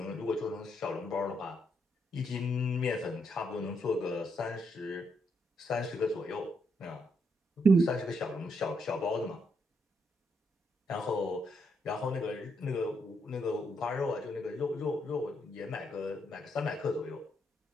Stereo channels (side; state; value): both; normal; correlation 0.77